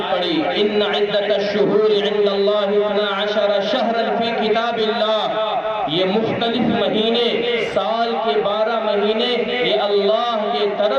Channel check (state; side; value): identical; both; correlation 1.00